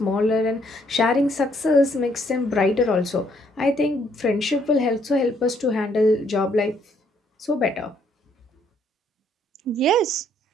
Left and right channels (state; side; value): normal; both; correlation 0.68